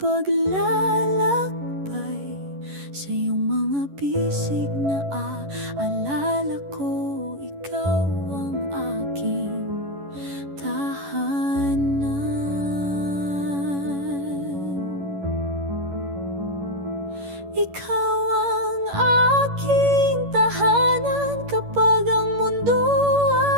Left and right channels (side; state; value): left; late; 11 ms